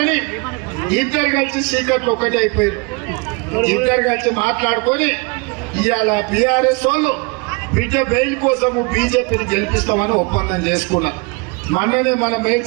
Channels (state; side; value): quieter; left; 30.1 dB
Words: ఇద్దరు కలిసి చీకట్లు ఒకటి అయిపోయారు. ఇద్దరు కలిసి మాట్లాడుకొని ఇవాళ బీఆర్ఎస్ వాళ్ళు బిడ్డ బెయిల్ కోసము బీజేపీని గెలిపిస్తామని ఒప్పందం చేసుకున్నారు. మొన్ననే మన